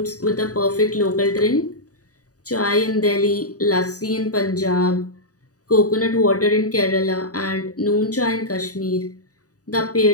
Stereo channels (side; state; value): right; late; 0.67 ms